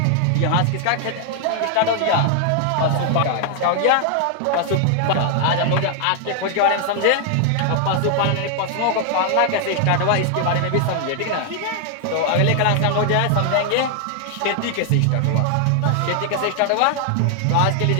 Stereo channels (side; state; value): both; different; correlation 0.00